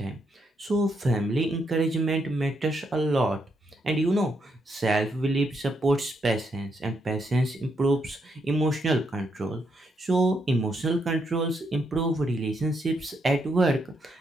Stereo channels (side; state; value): both; normal; correlation 0.78